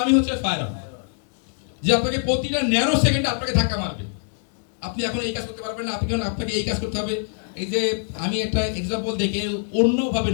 হচ্ছে ফায়ার অন, যে আপনাকে প্রতিটা ন্যানো সেকেন্ডে আপনাকে ধাক্কা মারবে। আপনি এখন এই কাজ করতে পারবেন না, আপনাকে এই কাজ করতে হবে। এই যে আমি একটা এক্সাম্পল দেখে অন্যভাবে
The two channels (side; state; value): right; silent; digital silence